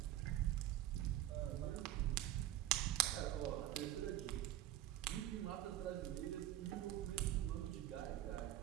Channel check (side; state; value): left; quieter; 13.4 dB